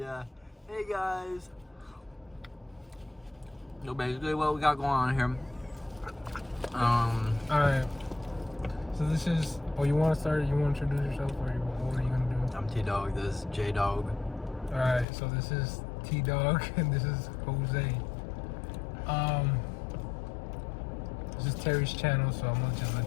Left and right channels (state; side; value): drops out; right; at 15.1 s